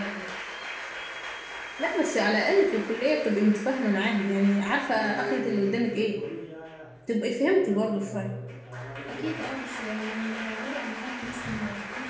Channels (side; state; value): both; identical; correlation 1.00